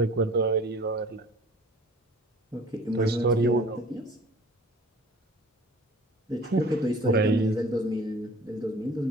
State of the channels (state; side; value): normal; both; correlation 0.48